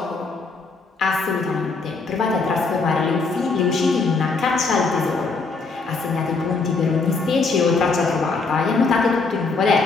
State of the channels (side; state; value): right; quieter; 4.1 dB